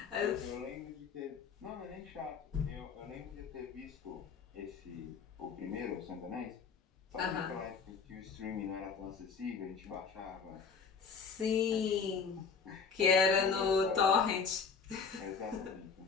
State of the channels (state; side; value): quieter; right; 5.6 dB